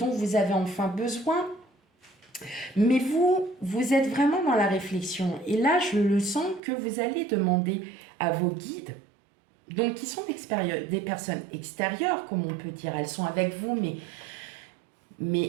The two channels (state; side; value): drops out; left; at 6.6 s